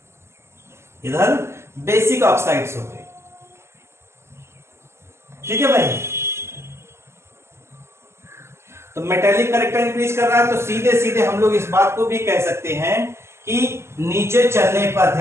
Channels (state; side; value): late; left; 0.13 ms